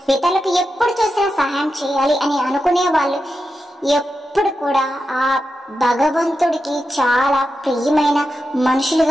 ఇతరులకు ఎప్పుడు చూసినా సహాయం చేయాలి అని అనుకునే వాళ్ళు ఎప్పుడు కూడా ఆ భగవంతుడికి చాలా ప్రియమైన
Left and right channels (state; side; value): normal; both; correlation 0.89